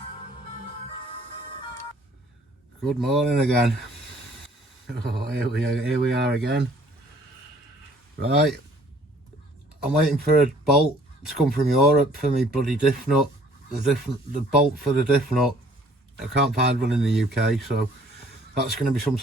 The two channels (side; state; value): both; normal; correlation 0.58